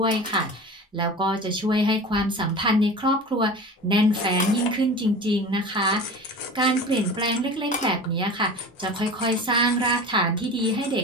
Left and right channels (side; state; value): both; normal; correlation 0.35